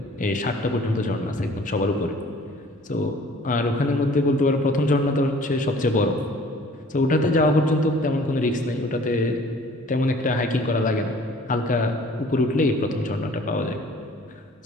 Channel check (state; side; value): normal; both; correlation 0.52